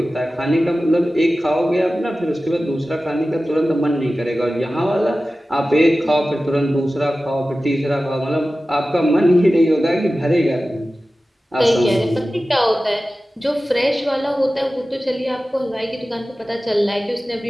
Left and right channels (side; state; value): both; normal; correlation 0.95